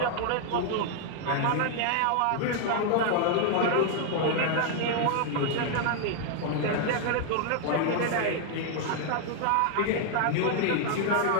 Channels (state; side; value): different; both; correlation 0.00